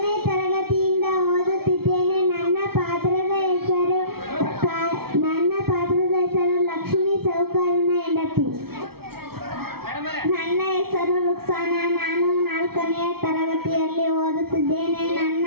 ತರಗತಿಯಿಂದ ಓದುತ್ತಿದ್ದೇನೆ. ನನ್ನ ಪಾತ್ರದ ಹೆಸರು ಲಕ್ಷ್ಮೀ ಸಾಹುಕಾರನ ಹೆಂಡತಿ. ನನ್ನ ಹೆಸರು ರುಕ್ಸಾನ. ನಾನು 4ನೇ ತರಗತಿಯಲ್ಲಿ ಓದುತ್ತಿದ್ದೇನೆ. ನನ್ನ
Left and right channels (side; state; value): left; late; 0.95 ms